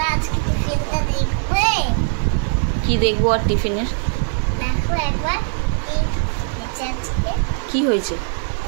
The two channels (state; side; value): silent; left; 66 dB below the other